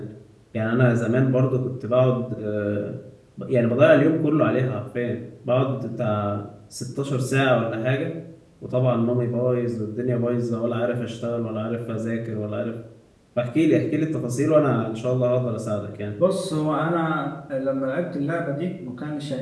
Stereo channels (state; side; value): identical; both; correlation 1.00